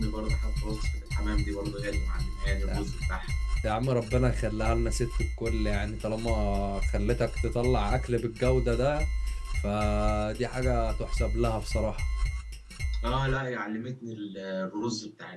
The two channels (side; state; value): both; identical; correlation 1.00